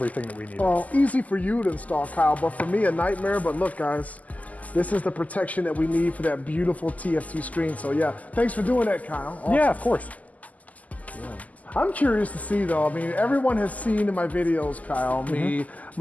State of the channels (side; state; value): right; late; 0.076 ms